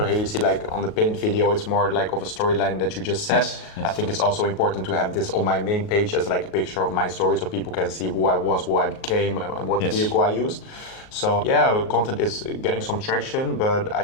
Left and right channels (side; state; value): right; late; 38 ms